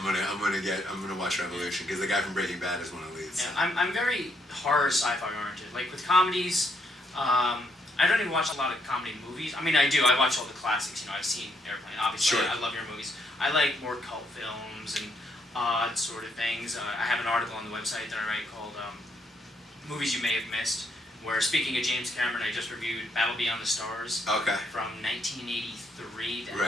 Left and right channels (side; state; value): both; normal; correlation 0.74